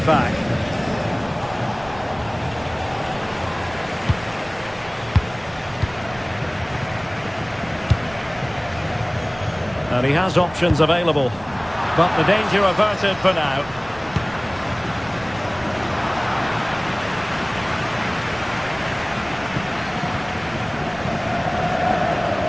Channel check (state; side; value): noise; right; rumble, 20 dB below the sound